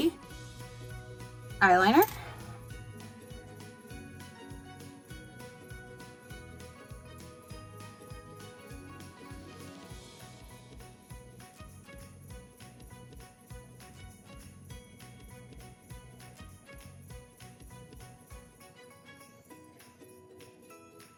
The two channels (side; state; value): both; identical; correlation 1.00